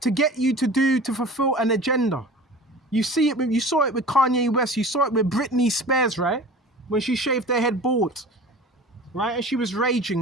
get you to fulfill an agenda. You saw it with Kanye West. You saw it with Britney Spears, right? When she shaved her head bald, right? And she was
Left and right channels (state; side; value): normal; both; correlation 0.39